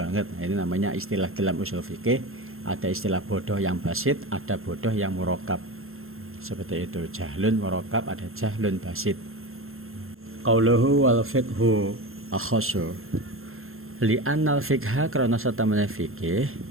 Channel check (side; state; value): left; late; 0.61 ms